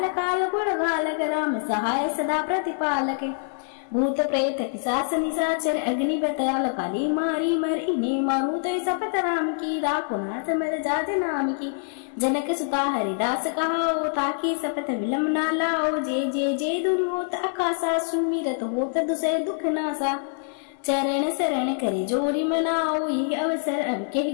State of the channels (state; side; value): silent; right; digital silence